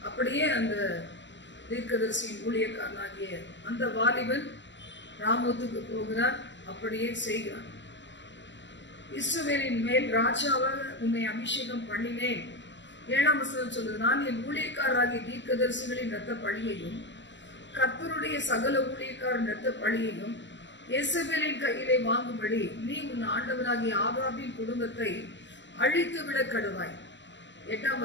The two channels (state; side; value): late; right; 0.53 ms